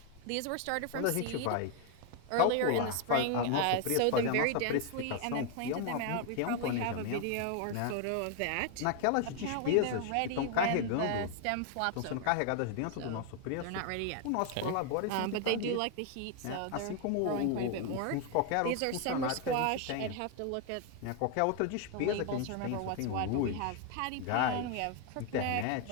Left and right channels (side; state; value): both; different; correlation 0.00